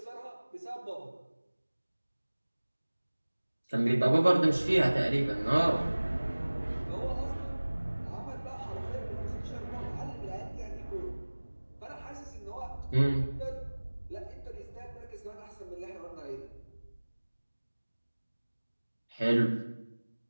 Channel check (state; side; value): inverted; both; correlation -1.00